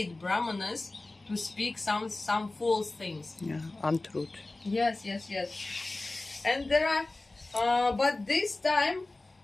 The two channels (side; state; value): right; quieter; 3.0 dB